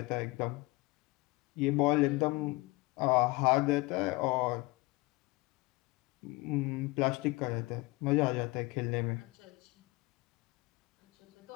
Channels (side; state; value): right; quieter; 23.1 dB